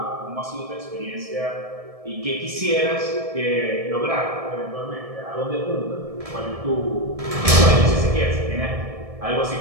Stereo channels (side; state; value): left; late; 1.7 ms